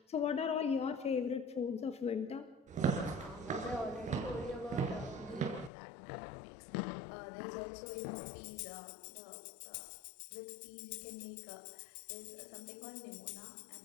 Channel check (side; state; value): right; drops out; at 5.7 s